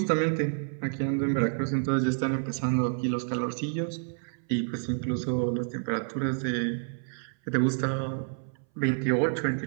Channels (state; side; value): silent; left; 59 dB below the other